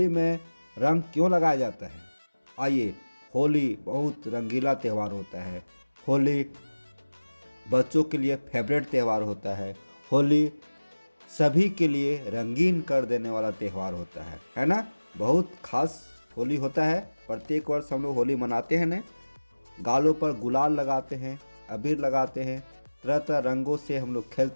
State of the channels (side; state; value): both; inverted; correlation -1.00